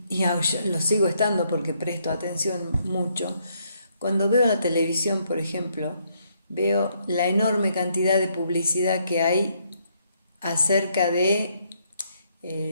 lo sigo estando porque presto atención mucho. Cuando veo la televisión, por ejemplo, veo la enorme cantidad de publicidad que hay acerca de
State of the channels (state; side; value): inverted; both; correlation -0.72